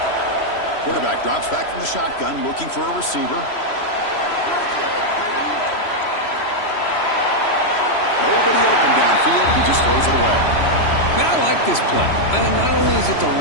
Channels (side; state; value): right; late; 3.0 ms